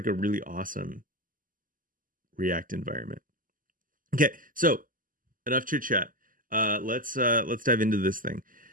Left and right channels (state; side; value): late; left; 0.40 ms